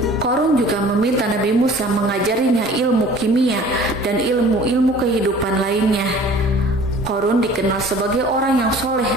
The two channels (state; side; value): normal; both; correlation 0.48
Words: Korun juga meminta Nabi Musa mengajarinya ilmu kimia dan ilmu-ilmu kehidupan lainnya. Korun dikenal sebagai orang yang soleh